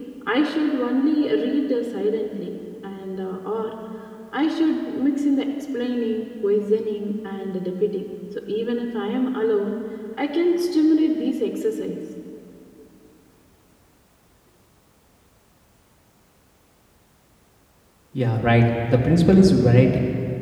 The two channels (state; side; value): identical; both; correlation 1.00